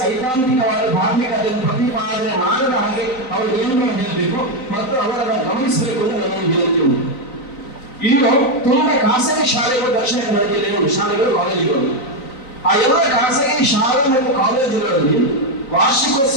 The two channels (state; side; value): late; right; 3.9 ms